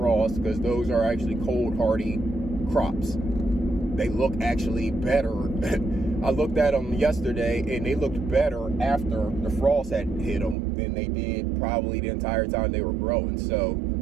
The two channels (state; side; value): drops out; left; at 10.6 s